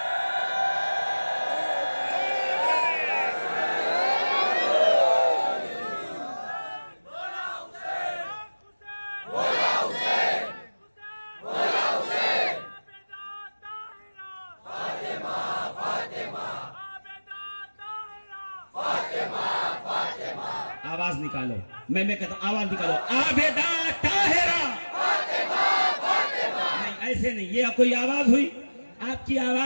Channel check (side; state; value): both; inverted; correlation -1.00